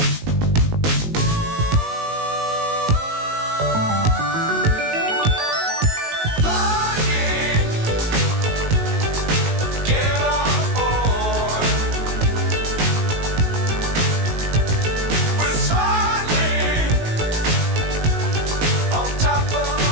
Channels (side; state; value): left; late; 19 ms